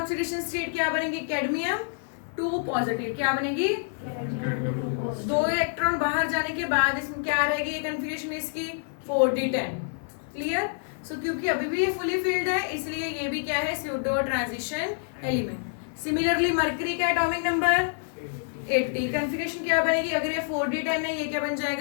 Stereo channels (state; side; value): silent; right; 57 dB below the other